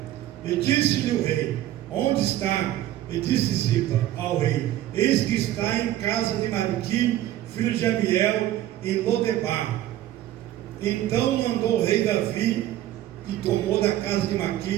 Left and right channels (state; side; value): quieter; left; 13.6 dB